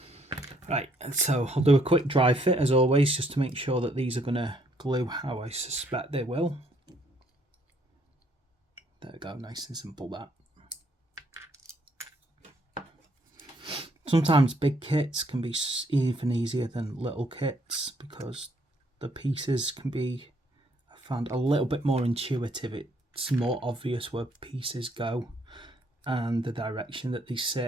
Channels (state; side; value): normal; both; correlation 0.68